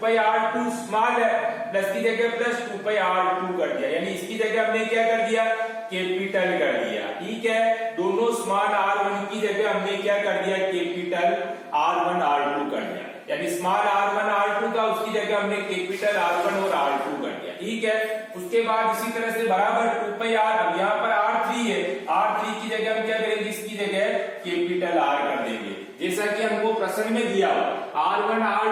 स्मॉल है, प्लस की जगह प्लस 2πr2 कर दिया, यानी इसकी जगह हमने क्या कर दिया, कैपिटल कर दिया। ठीक है, दोनों स्मॉल R1 की जगह हमने क्या कर दिया, कैपिटल R1 R2 कर दिया, यानी स्मॉल R1 R2 का उसकी जगह हमने कैपिटल R1 और R2 कर दिया। ठीक है, उसके बाद इसी तरह से बराबर 2πr, अब यहाँ पर R3 है, R3 की जगह हम क्या करेंगे, इसकी जगह कैपिटल R कर देंगे, जैसा कि हमको प्रश्न में दिया R1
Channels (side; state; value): both; identical; correlation 1.00